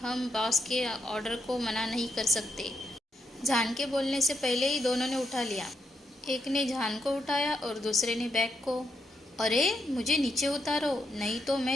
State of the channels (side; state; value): both; normal; correlation 0.80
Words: हम बॉस के ऑर्डर को मना नहीं कर सकते। जान के बोलने से पहले ही दोनों ने उठा लिया। एक ने जान को उठाया और दूसरे ने बैग को। अरे, मुझे नीचे उतारो, नहीं तो